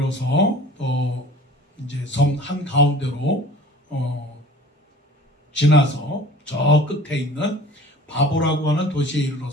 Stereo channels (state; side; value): normal; both; correlation 0.45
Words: 또 이제 섬 한 가운데로 지나서 저 끝에 있는 바보라고 하는 도시에